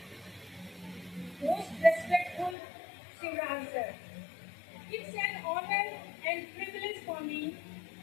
most respectful Shivraj sir. It's an honor and privilege for me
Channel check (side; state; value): right; drops out; at 2.6 s